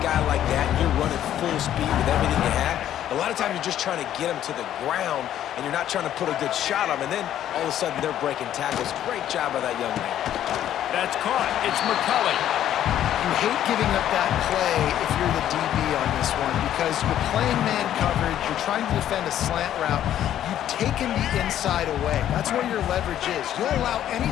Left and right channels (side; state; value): right; quieter; 11.3 dB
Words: like that, and you're running full speed with everything you have, a lot of times you're just trying to get him to the ground, and you're not trying to put a good shot on him, and then all of a sudden they're breaking tackles. Great job by that young man. That's caught. It's McCulley. You hate giving up that play if you're the DB on this one because you're playing man coverage, you're trying to defend a slant route, you've taken the inside away. That's where your leverage is. You'll allow